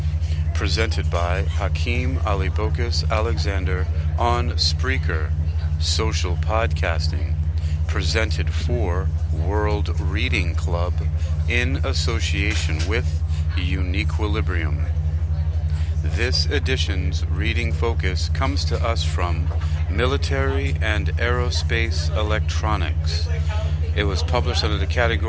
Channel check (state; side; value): identical; both; correlation 1.00